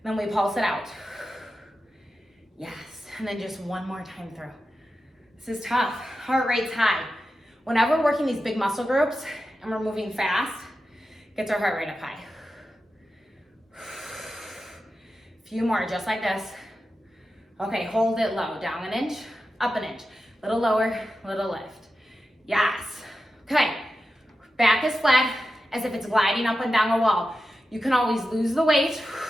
Then we pulse it out. Yes, and then just one more time through. This is tough, heart rate's high. Whenever we're working these big muscle groups and we're moving fast, gets our heart rate up high. Few more, just like this. Okay, hold it low, down an inch, up an inch. Little lower, little lift. Yes. Okay, back is flat as if it's gliding up and down a wall. You can always lose the weight,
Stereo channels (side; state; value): both; normal; correlation 0.91